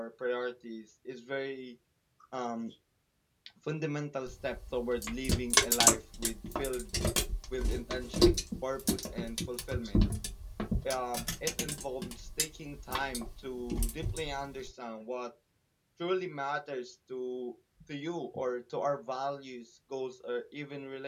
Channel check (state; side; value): identical; both; correlation 1.00